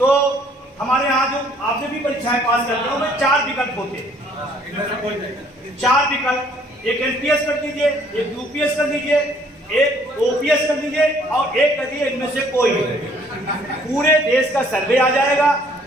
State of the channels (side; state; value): both; normal; correlation 0.61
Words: हमारे यहाँ जो आपने भी परीक्षाएं पास करते हो में 4 विकल्प होते हैं। 4 विकल्प, एक एनपीएस कर दीजिए, एक यूपीएस कर दीजिए, एक ओपीएस कर दीजिए और एक कर दीजिए इनमें से कोई। पूरे देश का सर्वे आ जाएगा,